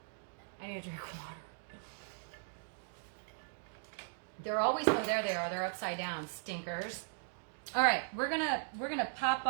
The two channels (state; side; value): silent; left; digital silence